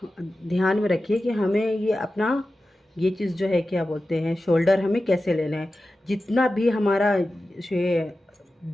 ध्यान में रखिए कि हमें ये अपना ये चीज़ जो है क्या बोलते हैं, शोल्डर हमें कैसे लेना है। जितना भी हमारा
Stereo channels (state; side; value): normal; both; correlation 0.94